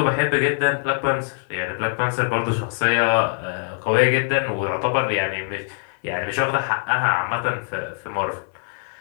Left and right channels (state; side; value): silent; right; 64 dB below the other